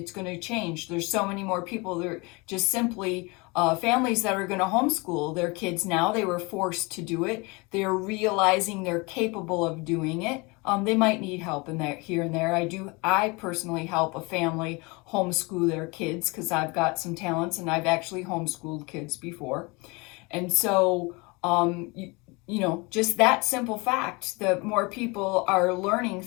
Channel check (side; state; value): right; quieter; 27.0 dB